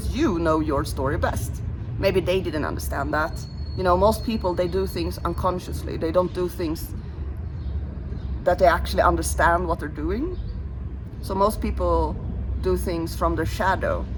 you know your story best. Maybe they didn't understand that. You know, most people, they do things unconsciously. They don't do things that they actually understand what they're doing. So most people do things from their shadow.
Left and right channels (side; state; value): both; identical; correlation 1.00